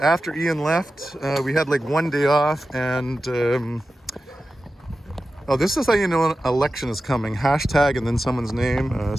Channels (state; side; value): normal; both; correlation 0.93